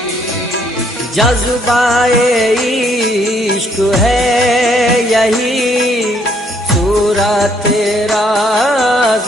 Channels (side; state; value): both; normal; correlation 0.68